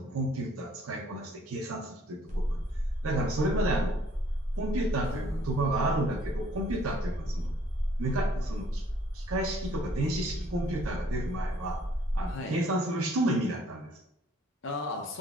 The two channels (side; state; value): both; normal; correlation 0.61